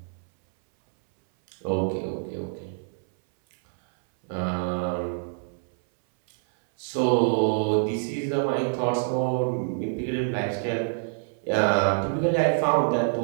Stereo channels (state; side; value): silent; left; 61 dB below the other